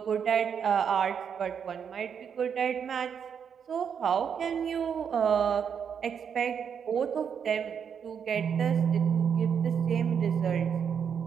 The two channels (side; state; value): left; quieter; 7.4 dB